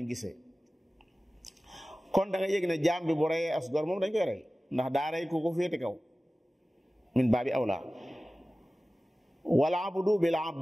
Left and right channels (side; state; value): both; normal; correlation 0.97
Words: gisee kon da nga yëg ne jaam bi bu reyee as gor moom dañ koy rey ndax daa rey ku ko féete kaw min baabi awla wala abdu bil